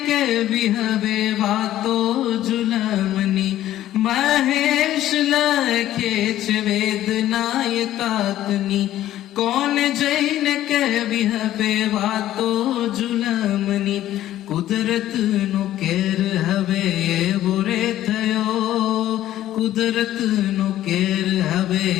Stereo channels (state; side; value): quieter; right; 13.2 dB